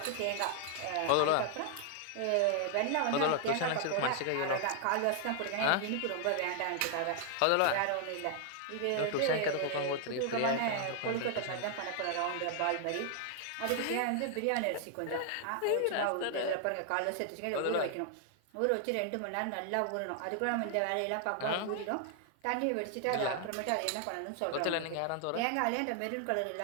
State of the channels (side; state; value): both; different; correlation 0.00